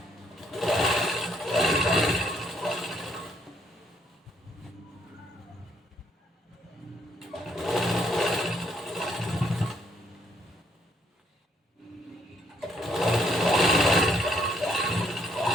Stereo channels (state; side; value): normal; both; correlation 0.71